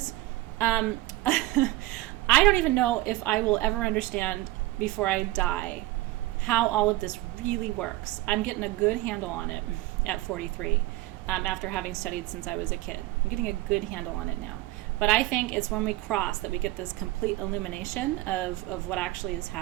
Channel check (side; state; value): left; quieter; 17.8 dB